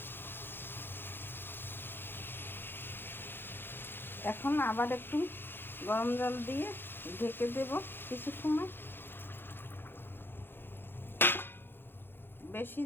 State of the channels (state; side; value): late; right; 0.10 ms